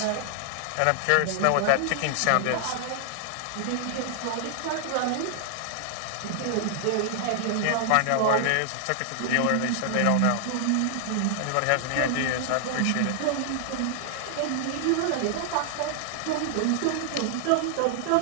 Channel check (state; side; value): different; both; correlation -0.01